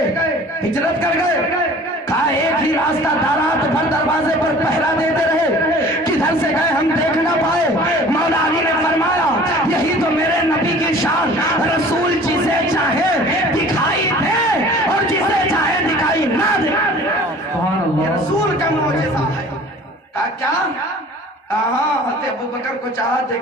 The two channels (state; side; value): normal; both; correlation 0.46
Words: ہجرت کر گئے. کہا ایک ہی راستہ تھا, رات بھر دروازے پر پہرا دیتے رہے, کدھر سے گئے ہم دیکھ نہ پائے. مولا علی نے فرمایا یہی تو میرے نبی کی شان, رسول جسے چاہے دکھائی دے اور جسے چاہے دکھائی نہ دے. یہ رسول کا معجزہ ہے. کہا کیا؟ ہاں حضرت ابوبکر کو چاہا